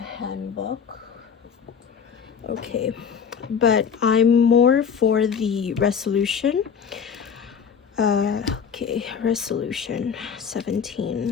Okay, but I'm more for the resolution. Okay, resolution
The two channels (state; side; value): quieter; right; 7.0 dB